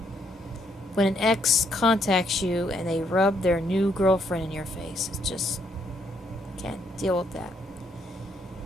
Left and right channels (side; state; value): both; normal; correlation 0.72